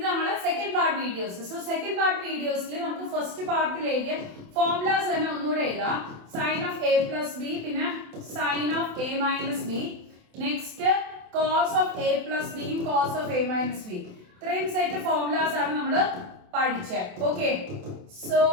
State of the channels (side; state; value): left; late; 27 ms